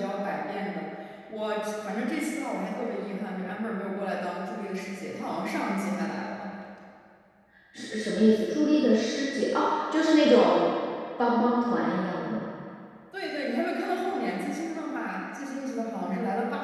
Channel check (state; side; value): identical; both; correlation 1.00